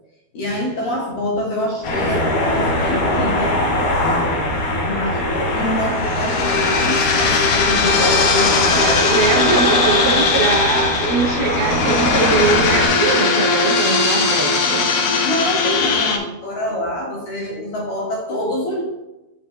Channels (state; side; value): late; right; 12 ms